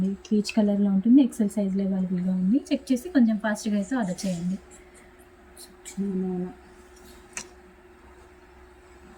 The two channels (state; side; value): identical; both; correlation 1.00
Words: పీచ్ కలర్లో ఉంటుంది. ఎక్సెల్ సైజ్లో అవైలబుల్గా ఉంది. చెక్ చేసి కొంచెం ఫాస్ట్గా అయితే ఆర్డర్ చేయండి.